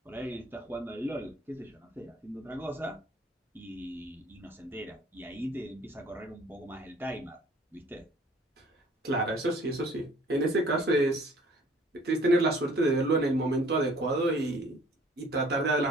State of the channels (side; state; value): both; normal; correlation 0.54